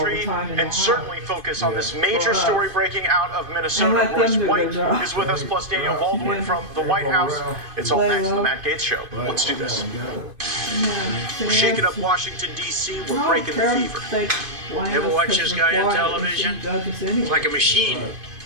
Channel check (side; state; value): left; late; 2.5 ms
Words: and certainly focus on this major story breaking out of Minnesota. Royce White is with us, plus Daniel Baldwin from the White House. It's all next on the Matt Gaetz Show. Let's do this. We're shaking up Washington, D.C. We're breaking the fever. Ever watch this guy on television? He's like a machine.